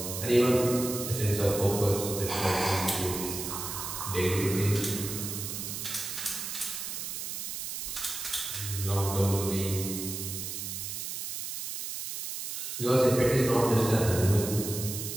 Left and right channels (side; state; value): right; noise; hiss, 5 dB below the sound